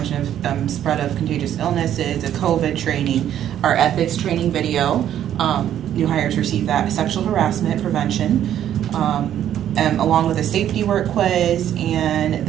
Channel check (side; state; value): left; quieter; 10.8 dB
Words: of spread of contagious illnesses, a COVID training, our ethics training video. New hires receive that sexual harassment prevention, along with a safety work quiz and